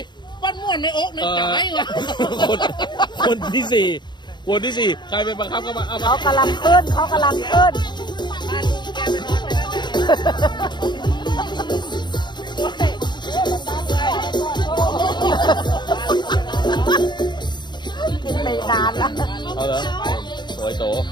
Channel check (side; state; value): right; late; 0.21 ms